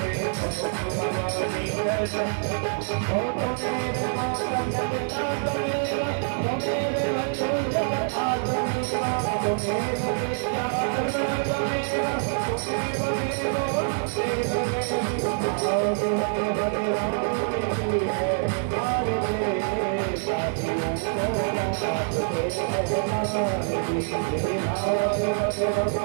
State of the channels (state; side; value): silent; left; digital silence